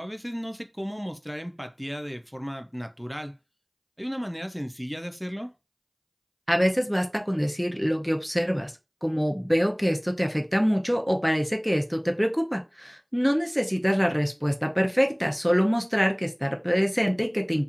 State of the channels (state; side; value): identical; both; correlation 1.00